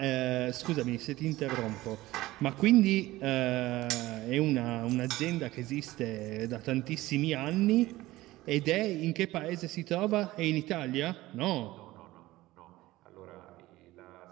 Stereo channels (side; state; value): left; quieter; 17.7 dB